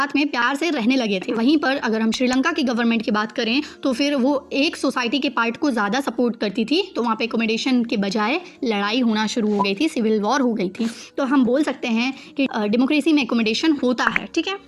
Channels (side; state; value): both; identical; correlation 1.00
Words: में प्यार से रहने लगे थे। वहीं पर अगर हम श्रीलंका की गवर्नमेंट की बात करें तो फिर वो एक सोसाइटी के पार्ट को ज़्यादा सपोर्ट करती थी, तो वहाँ पे एकोमोडेशन के बजाय लड़ाई होना शुरू हो गई थी, सिविल वॉर हो गई थी। तो हम बोल सकते हैं कि डेमोक्रेसी में एकोमोडेशन होता है, ठीक है।